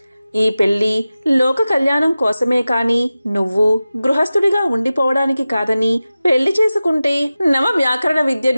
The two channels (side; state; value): both; inverted; correlation -0.95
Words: ఈ పెళ్లి లోక కళ్యాణం కోసమే కాని నువ్వు గృహస్థుడిగా ఉండిపోవడానికి కాదని, పెళ్లి చేసుకుంటే నవ వ్యాకరణ